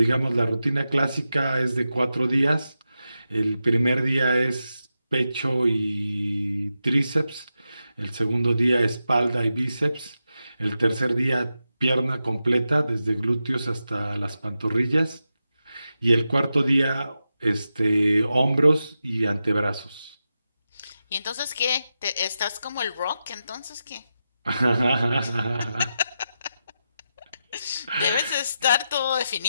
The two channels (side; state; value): both; inverted; correlation -0.89